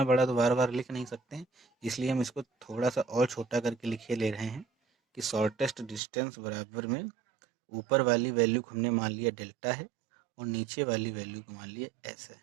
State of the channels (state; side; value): drops out; left; at 6.0 s